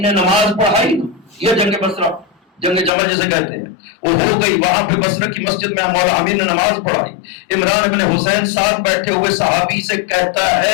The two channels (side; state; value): right; drops out; at 2.9 s